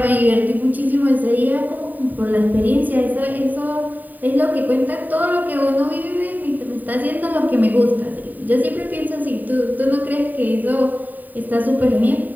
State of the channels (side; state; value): left; late; 0.086 ms